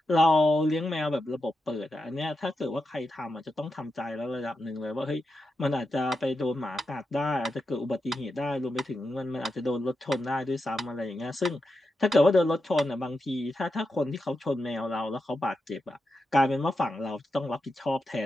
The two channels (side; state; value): both; normal; correlation 0.88